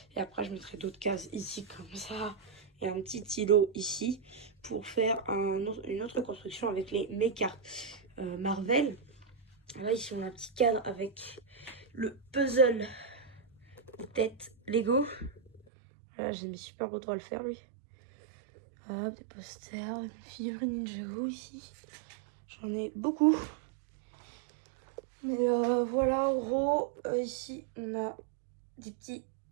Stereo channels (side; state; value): left; drops out; at 15.6 s